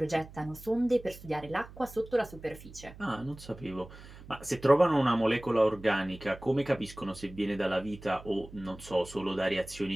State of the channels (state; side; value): noise; right; hum, 17 dB below the sound